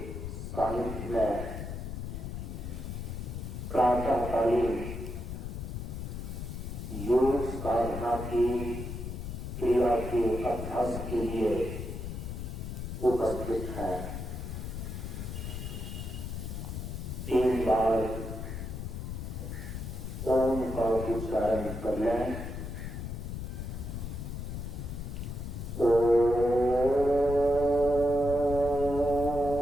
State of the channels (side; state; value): left; noise; rumble, 6 dB below the sound